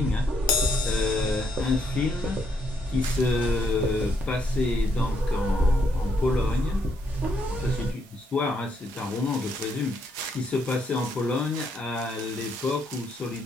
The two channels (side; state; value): both; normal; correlation 0.74